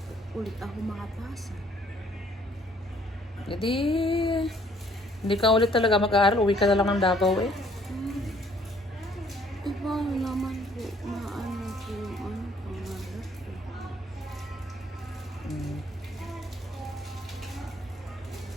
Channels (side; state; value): both; normal; correlation 0.62